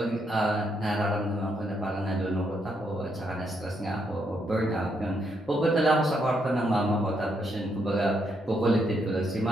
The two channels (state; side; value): normal; both; correlation 0.77